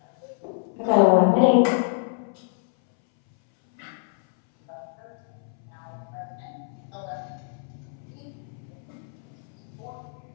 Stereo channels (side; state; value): right; silent; 60 dB below the other